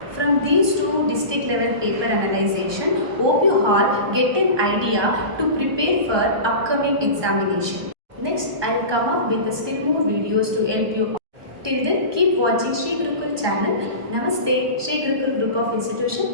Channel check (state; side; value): late; left; 1.2 ms